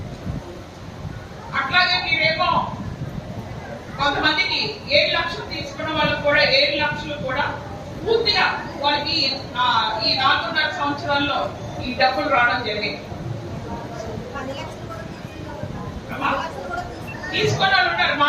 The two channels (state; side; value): identical; both; correlation 1.00